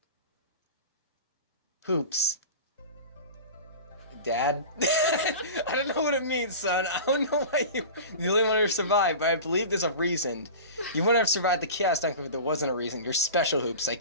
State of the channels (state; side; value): inverted; both; correlation -0.34